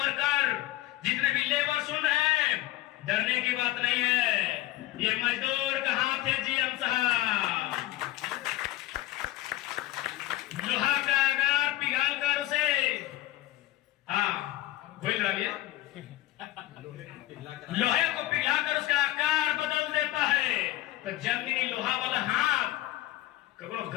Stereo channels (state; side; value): quieter; right; 16.2 dB